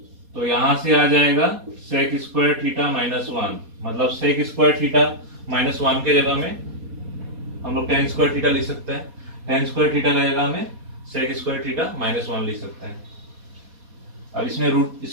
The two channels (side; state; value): left; late; 4.2 ms